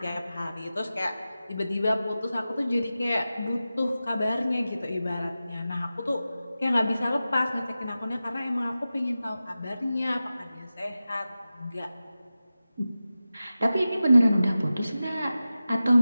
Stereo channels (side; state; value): both; inverted; correlation -0.94